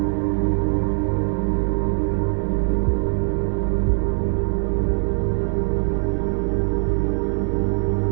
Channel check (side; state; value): left; silent; 61 dB below the other